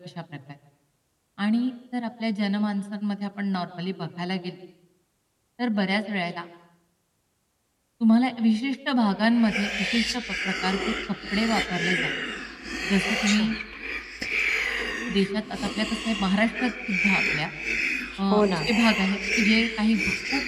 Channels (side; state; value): both; identical; correlation 1.00